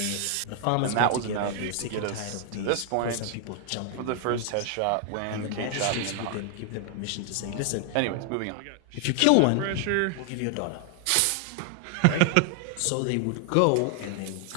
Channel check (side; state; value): both; different; correlation 0.00